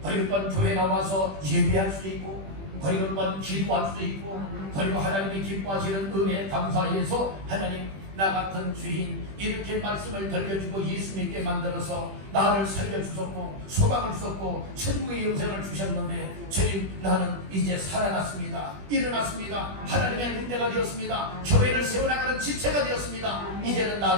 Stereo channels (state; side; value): late; left; 21 ms